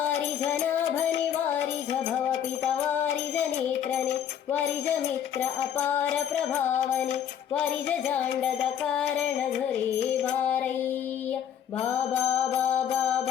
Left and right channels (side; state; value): right; quieter; 9.2 dB